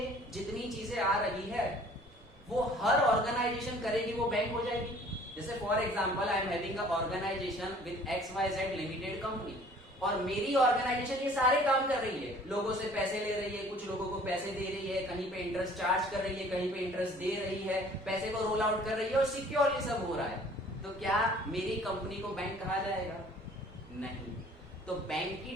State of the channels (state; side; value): normal; both; correlation 0.52